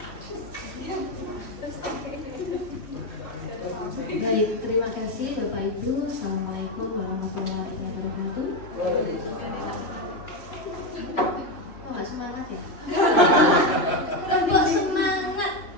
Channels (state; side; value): late; right; 3.0 ms